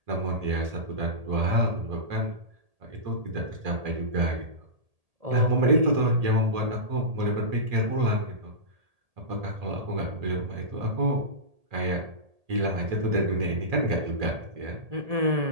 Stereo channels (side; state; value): left; late; 1.8 ms